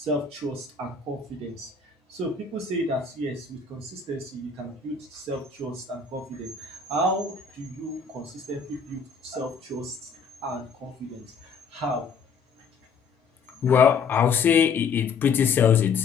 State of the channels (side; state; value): right; quieter; 5.3 dB